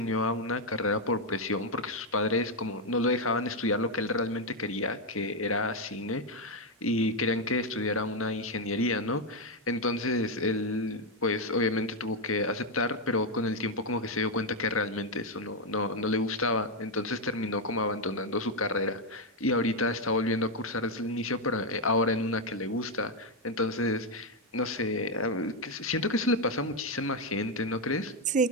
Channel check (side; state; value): both; normal; correlation 0.03